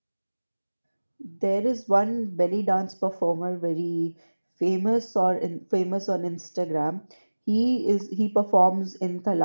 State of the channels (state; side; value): inverted; both; correlation -1.00